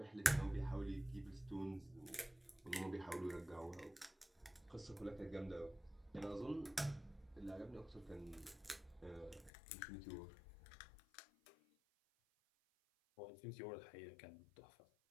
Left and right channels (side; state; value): right; drops out; at 9.5 s